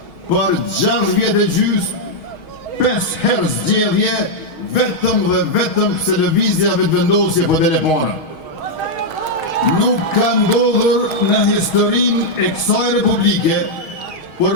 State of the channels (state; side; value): late; right; 6.3 ms